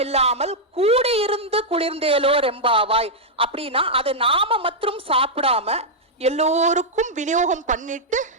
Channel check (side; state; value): both; normal; correlation -0.05